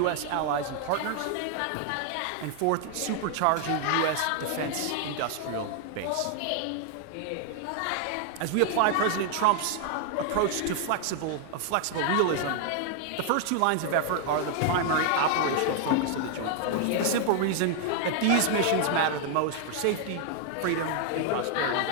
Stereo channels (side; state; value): both; different; correlation 0.00